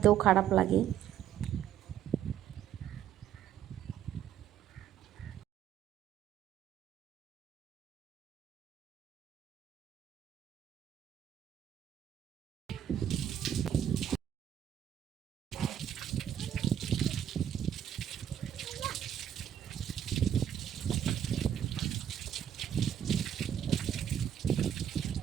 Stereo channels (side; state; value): left; quieter; 9.9 dB